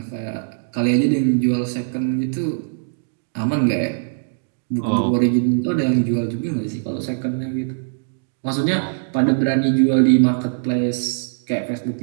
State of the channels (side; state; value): left; silent; digital silence